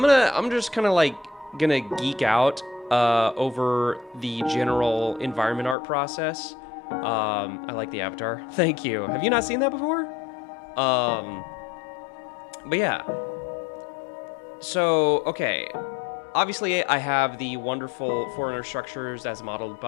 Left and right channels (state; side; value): drops out; right; at 5.8 s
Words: just kind of like gonna geek out over the general environment art process. I like the avatar. Thank you. Have you not seen that before? But yeah. So, okay. Obviously, I have the wonderful Foreigner structures as modeled